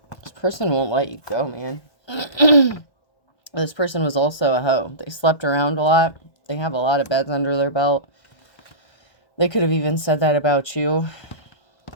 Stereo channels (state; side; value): late; right; 1.6 ms